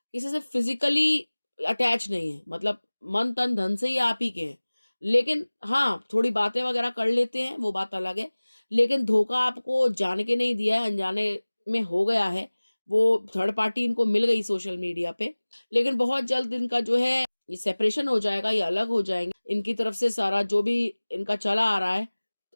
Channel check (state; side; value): inverted; both; correlation -1.00